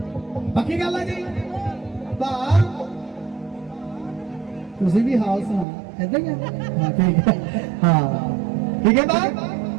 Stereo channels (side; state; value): left; drops out; at 5.7 s